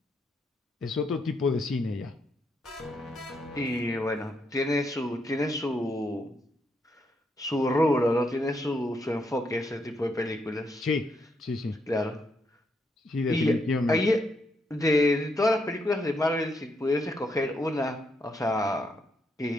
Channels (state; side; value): normal; both; correlation 0.78